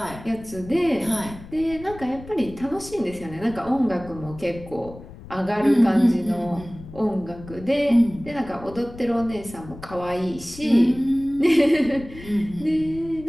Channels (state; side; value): noise; left; rumble, 16 dB below the sound